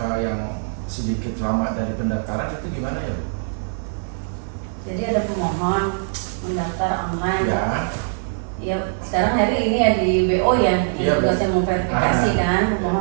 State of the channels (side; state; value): left; silent; 61 dB below the other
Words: yang sedikit lama dari pendaftaran, itu gimana ya Bu? Jadi ada pemohon mendaftar online. Ya. Ya, sekarang hari ini ya di BO ya, Iya, yang tugasnya memverifikasi kan